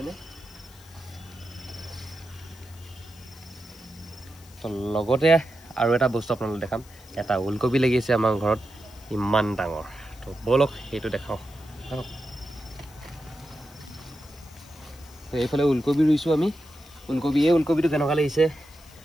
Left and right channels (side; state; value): left; noise; hiss, 24 dB below the sound